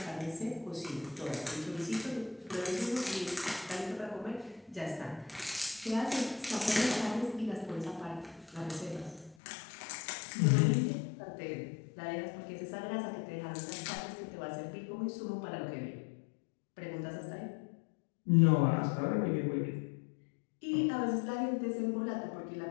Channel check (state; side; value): drops out; right; at 9.3 s